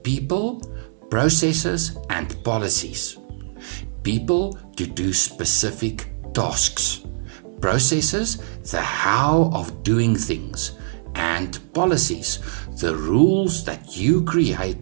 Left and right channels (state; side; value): silent; left; 64 dB below the other